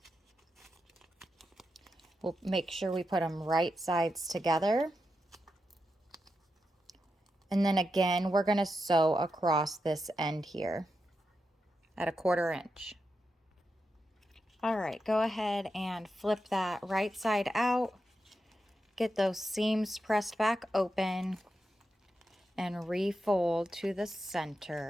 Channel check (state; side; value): normal; both; correlation 0.87